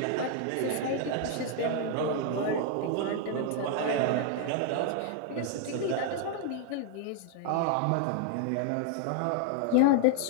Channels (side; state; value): both; different; correlation 0.00